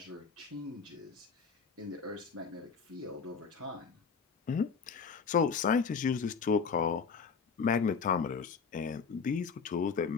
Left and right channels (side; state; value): right; quieter; 5.6 dB